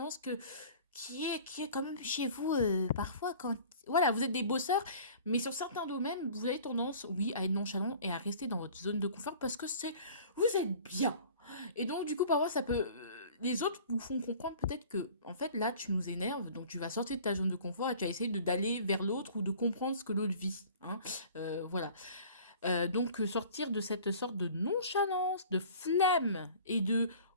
qui est quand même chez vous parfois quand... Voilà, vous êtes des bosseurs, mais sur certains domaines, vous avez tendance, oui, à être nonchalant et à rester dans votre zone de confort parce que vous êtes bien. Et donc, du coup, parfois, ça peut... les autres vous font comprendre peut-être que, en fait, là, tu nous énerves, donc tu vas sortir de ta zone de confort et tu vas essayer d'aller vers l'autre ou de comprendre ce que l'autre vit, hein. Voilà. Donc, sortir de cette sorte de nonchalance, de flemme et de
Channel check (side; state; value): both; inverted; correlation -0.46